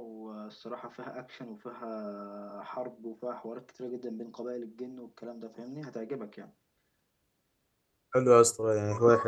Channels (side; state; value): both; identical; correlation 1.00